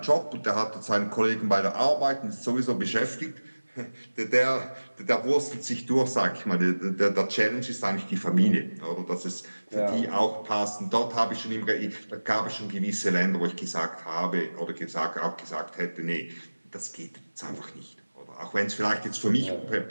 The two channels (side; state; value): both; inverted; correlation -1.00